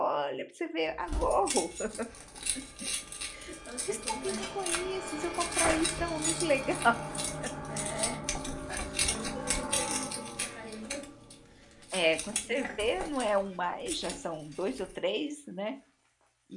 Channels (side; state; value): both; identical; correlation 1.00